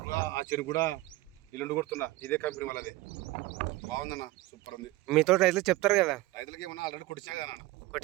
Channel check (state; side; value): quieter; left; 18.9 dB